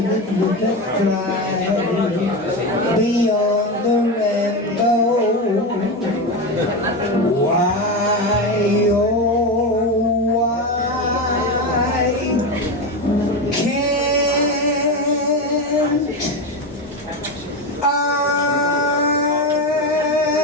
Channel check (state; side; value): normal; both; correlation 0.17